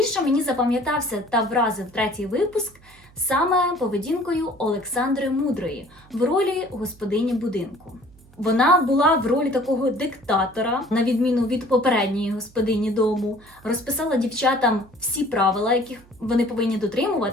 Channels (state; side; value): noise; right; hum, 26 dB below the sound